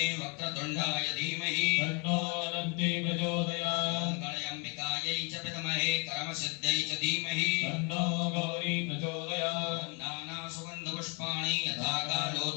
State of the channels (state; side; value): quieter; right; 34.0 dB